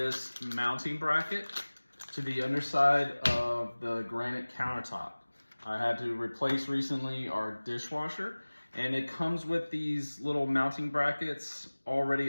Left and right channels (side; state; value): both; inverted; correlation -1.00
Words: mounting bracket to the underside of the granite countertop. I had to replace recently our dishwasher, and it comes with these little mounting brackets already